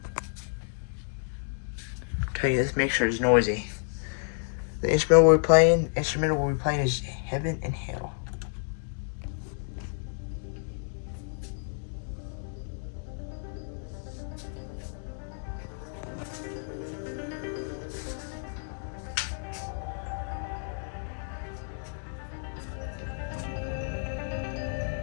Tell you this mixture is noisy. The instrumental we'll be playing is Heaven and Hell.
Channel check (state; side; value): silent; right; 58 dB below the other